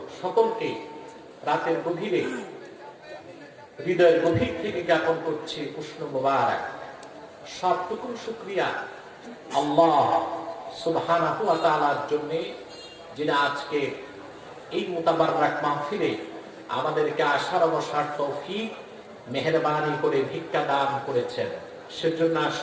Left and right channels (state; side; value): identical; both; correlation 1.00